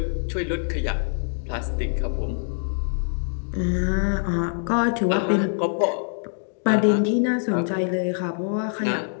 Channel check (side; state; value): right; silent; 62 dB below the other